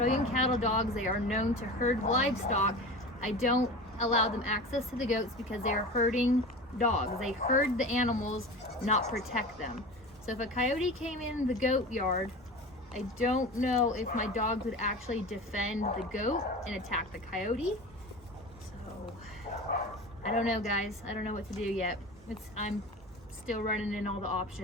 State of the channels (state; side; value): normal; both; correlation 0.33